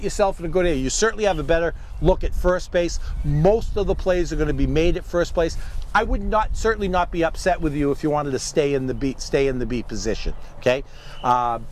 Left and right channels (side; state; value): both; identical; correlation 1.00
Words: yourself in a good area, you certainly have a better look at first base. Most of the plays are going to be made at first base. I would certainly not be upset with you if you wanted to stay in the B position. Okay,